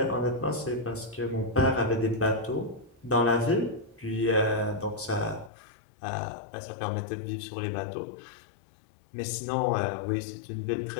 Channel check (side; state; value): right; drops out; at 5.5 s